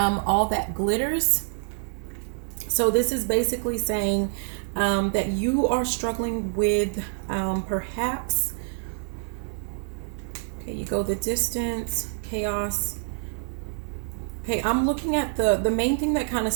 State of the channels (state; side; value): silent; left; 61 dB below the other